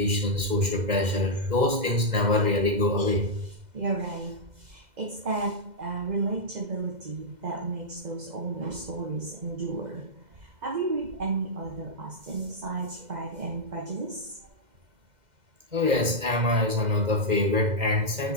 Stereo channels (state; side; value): late; left; 2.0 ms